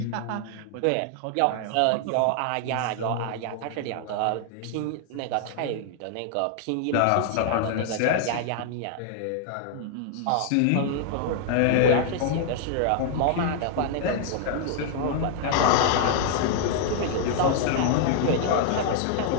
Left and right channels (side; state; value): both; different; correlation 0.00